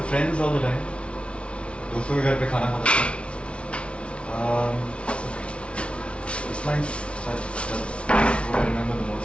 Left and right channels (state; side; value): late; right; 0.060 ms